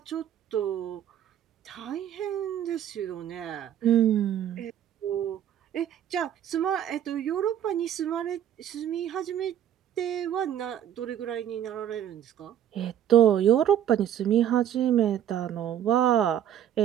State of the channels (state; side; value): quieter; left; 10.4 dB